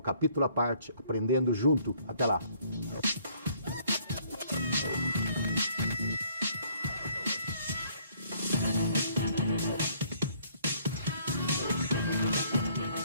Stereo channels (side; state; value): both; inverted; correlation -0.62